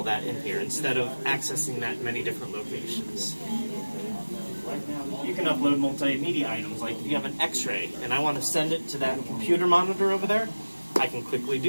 that in here instead of accessing that in many different locations. You can upload multimedia items, like if you have an x-ray and I want to send it to that computer monitor over there, I can quickly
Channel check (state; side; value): inverted; both; correlation -1.00